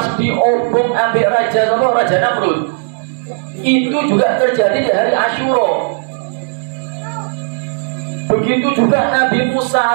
diobong ambek Raja Namrud. Itu juga terjadi di hari Asyura. Begitu juga Nabi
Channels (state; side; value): silent; left; 70 dB below the other